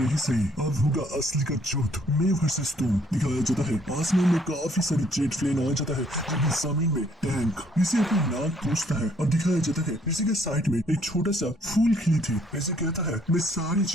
यही सही, अब होगा असली का जुट, मैं वर्सेस तुम। दिखाया जाता है आसमान में काफी सारी जेट प्लेन आ जाता है जबकि जमीन में टैंक। ऋषि अपनी नाक पूछता है और दिखाया जाता है ऋषि के साइड में एक छोटा सा फूल खिली थी। ऋषि कहता है मैं सारी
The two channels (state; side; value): normal; both; correlation 0.65